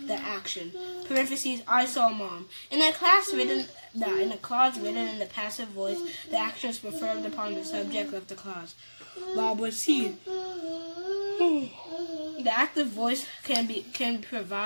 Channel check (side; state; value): both; inverted; correlation -1.00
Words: the action. Parentheses, I saw mom. In a clause written in the passive voice, the action is performed upon the subject of the clause. Bob was seen. The active voice can